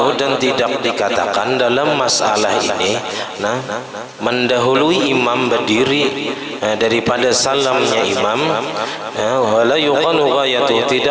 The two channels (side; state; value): both; identical; correlation 1.00